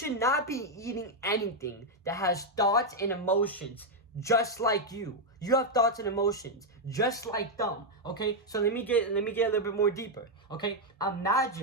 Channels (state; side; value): normal; both; correlation 0.00